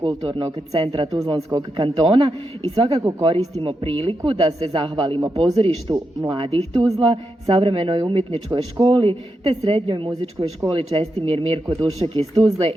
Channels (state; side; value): normal; both; correlation 0.86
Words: centra Tuzlanskog kantona i svakako koristimo priliku da se zahvalimo pozorištu Mladih Tuzla, savremenoj umjetničkoj školi te srednjoj muzičkoj školi Čestimir Mirko Dušek iz Tuzle